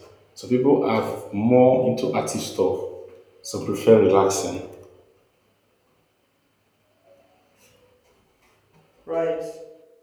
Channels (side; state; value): both; identical; correlation 1.00